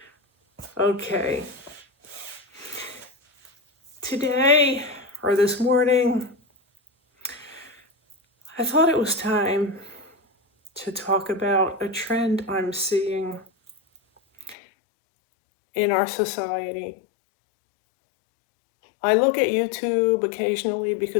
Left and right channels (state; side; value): drops out; right; at 14.6 s